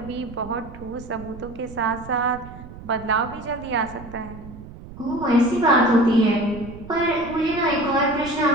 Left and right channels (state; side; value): noise; right; rumble, 15 dB below the sound